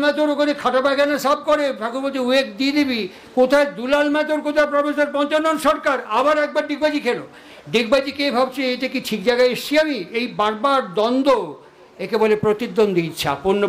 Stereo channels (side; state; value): both; identical; correlation 1.00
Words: ম্যাথর ওখানে খাটা পায়খানা সাফ করে, ঠাকুর বলছে উয়েক দিয়ে দিবি। কোথায় দুলাল ম্যাথর, কোথায় প্রফেসর পঞ্চানন সরকার? আবার একবার ডিগবাজি খেলো। ডিগবাজি কে ভাবছে এটা কি ঠিক জায়গায় এসছি আমি? এই বারবার দ্বন্দ্ব, একে বলে প্রতিদ্বন্দ্বী ইচ্ছা,